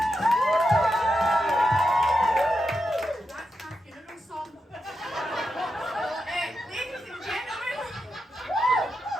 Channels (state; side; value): normal; both; correlation 0.87